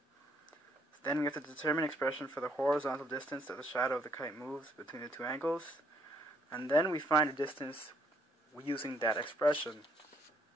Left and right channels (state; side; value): normal; both; correlation 0.69